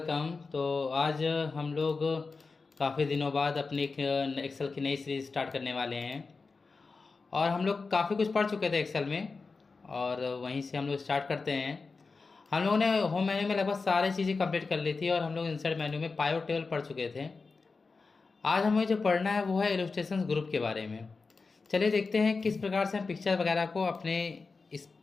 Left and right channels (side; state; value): right; quieter; 4.3 dB